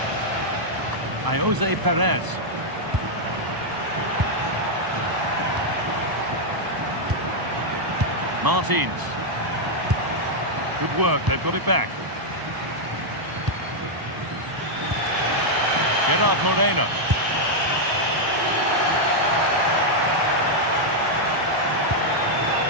Jose Perez. Martins. Good work, they've got it back. Gerard Moreno.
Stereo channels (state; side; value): late; left; 1.0 ms